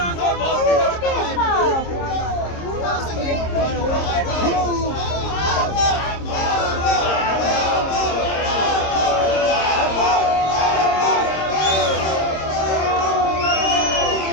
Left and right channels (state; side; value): late; right; 26 ms